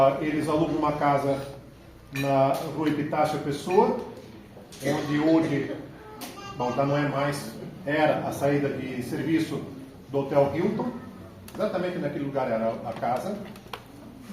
eles alugam uma casa na rua Epitácio Pessoa, onde hoje, já não é mais, era a saída de serviço do Hotel Hilton. Exatamente naquele lugar era a casa.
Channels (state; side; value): identical; both; correlation 1.00